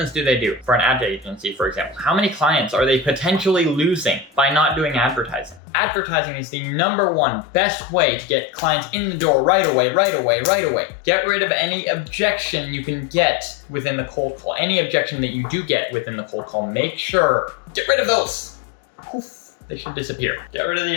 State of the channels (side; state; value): right; drops out; at 5.6 s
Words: do they do? For an ad agency, for example, how many clients are they potentially losing by not doing advertising? Advertising is the #1 best way to get clients in the door right away. Get rid of any objection you can get within the cold call. Any objection that you do get within the cold call, make sure, get rid of those. Poof, they should disappear. Get rid of the